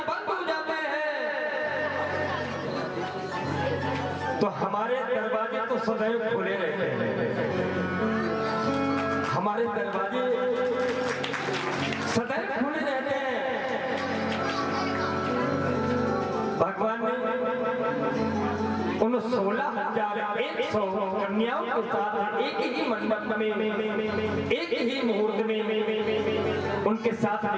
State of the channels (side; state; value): both; identical; correlation 1.00